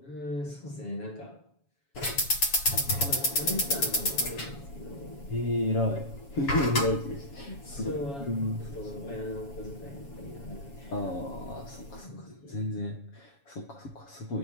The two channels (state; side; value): late; right; 7.2 ms